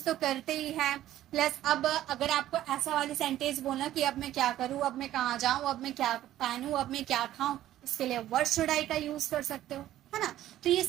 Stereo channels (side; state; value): left; quieter; 13.3 dB